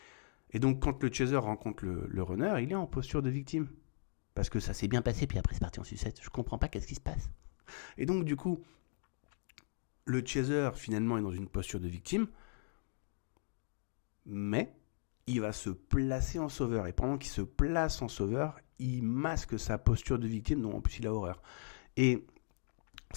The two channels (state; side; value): silent; right; digital silence